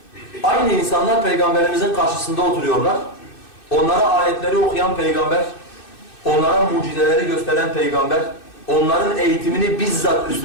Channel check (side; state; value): right; late; 2.6 ms